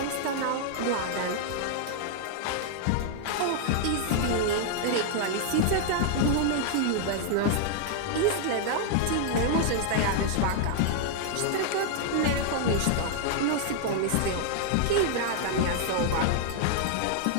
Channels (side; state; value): both; different; correlation -0.01